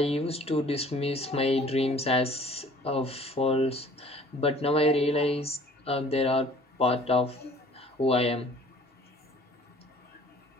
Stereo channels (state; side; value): normal; both; correlation 0.52